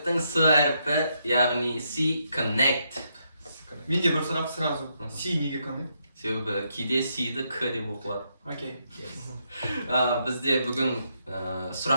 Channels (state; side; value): inverted; both; correlation -0.78